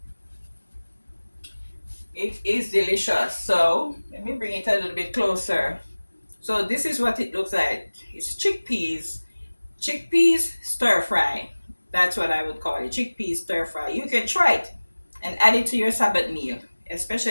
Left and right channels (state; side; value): inverted; both; correlation -1.00